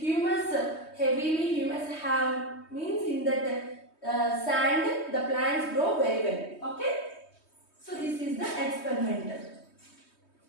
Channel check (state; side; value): late; right; 3.2 ms